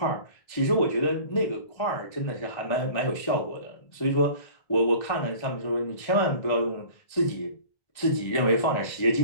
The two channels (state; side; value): late; right; 1.3 ms